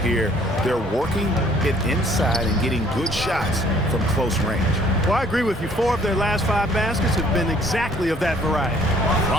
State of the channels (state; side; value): normal; both; correlation 0.59